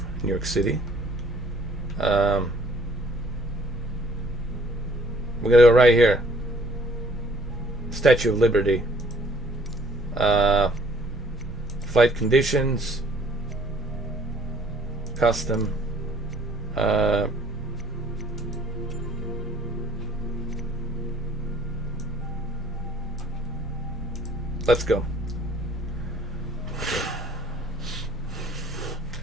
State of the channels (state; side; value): normal; both; correlation 0.58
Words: New York City. We're gonna go right here. Statue of Liberty. Flight conditions. Custom. Let's go.